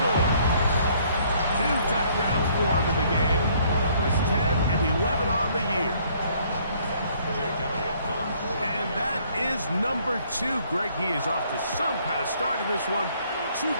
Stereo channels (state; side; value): inverted; both; correlation -0.63